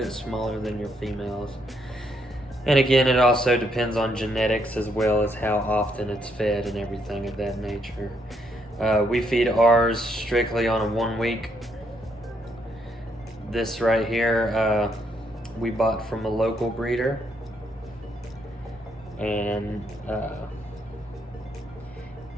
smaller than your females. And again, it also depends on genetics as well as how often it's fed and everything of that nature. We feed ours strictly on a 1 week. This right here, we bought from a local breeder. And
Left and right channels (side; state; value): both; normal; correlation 0.74